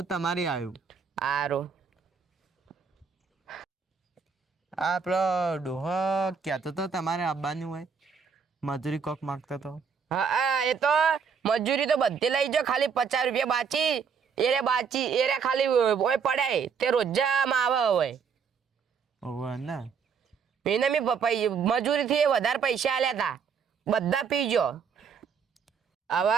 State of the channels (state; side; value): quieter; left; 6.2 dB